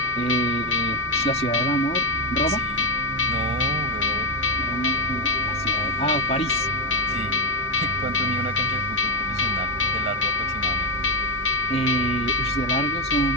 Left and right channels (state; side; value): normal; both; correlation 0.04